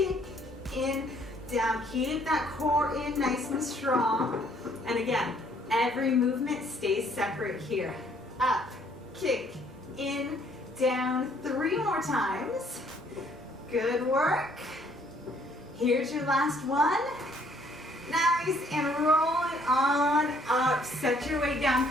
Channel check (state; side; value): normal; both; correlation 0.63